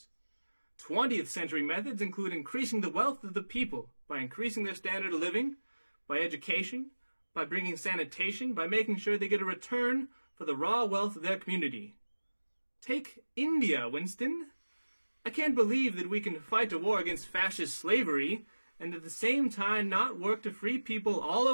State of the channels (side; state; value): both; inverted; correlation -1.00